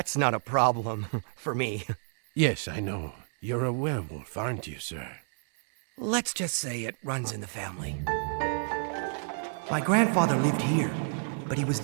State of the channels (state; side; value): silent; left; 58 dB below the other